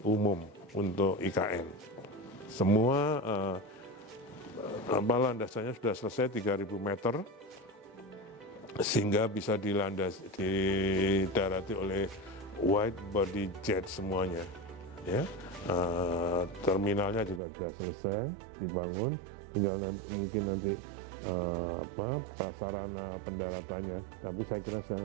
umum untuk IKN. Semua landasannya sudah selesai 3.000 meter, sehingga bisa didarati oleh wide body jet semuanya. Ya, terminalnya juga sudah selesai dibangun, tinggal mungkin nanti prasarana pendaratannya, tapi saya kira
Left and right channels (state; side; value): drops out; left; at 17.4 s